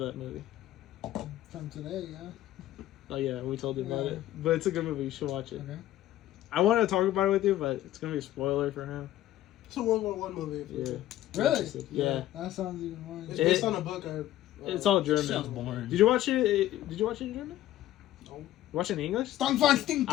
movie? From today, yeah. Oh yeah, we told you about Yeah. it. But it's a good movie. You should watch it. Okay. I wanted to talk about it with you, but it's gonna be a spoiler for him. It's a World War One movie. Yeah. Really? Yeah. That sounds even more. It's It- based on a book. It's all Sounds German. boring. Did you watch it? Did you watch it in German? No. Watch it in English? Stongfang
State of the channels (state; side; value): quieter; right; 13.8 dB